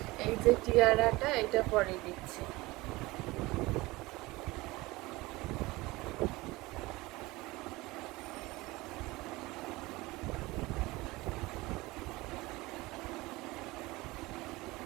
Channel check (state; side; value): quieter; left; 21.1 dB